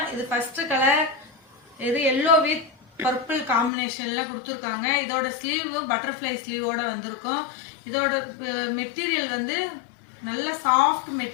இது ஃபர்ஸ்ட் கலர், இது எல்லோ வித் பர்பிள் காம்பினேஷன்ல கொடுத்துருக்காங்க. இதோட ஸ்லீவ் பட்டர்ஃப்ளை ஸ்லீவோட வந்திருக்கும். இதோட மெட்டீரியல் வந்து நல்ல சாஃப்ட்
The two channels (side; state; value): right; drops out; at 3.7 s